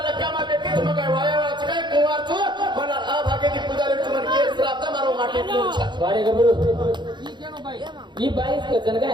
कामा भेटली तुम्ही काय वायावाच काय कुवारचो मला आ भागेती पुजारी तुम्हाला केस राहता मारो माटी कुडचा वारे गबरू ही बाईस कचन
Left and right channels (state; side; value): late; left; 0.22 ms